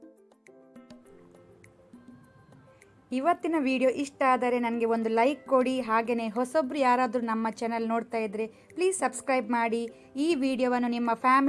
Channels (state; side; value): identical; both; correlation 1.00